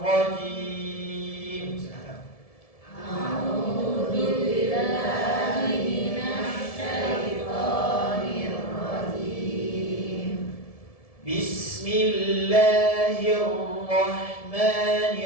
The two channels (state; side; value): late; right; 1.7 ms